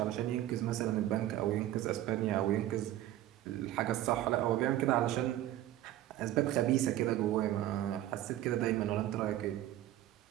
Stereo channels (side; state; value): left; quieter; 13.7 dB